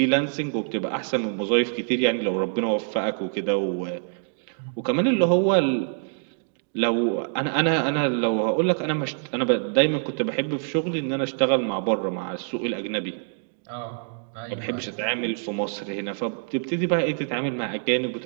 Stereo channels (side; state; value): left; silent; digital silence